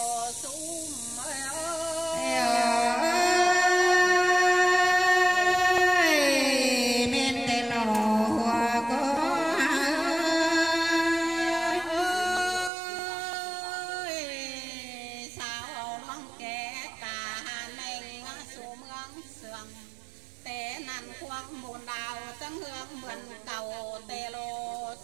xuống té năn khoang buồn đào trắng hương mượn cầu tê lô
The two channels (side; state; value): left; drops out; at 12.7 s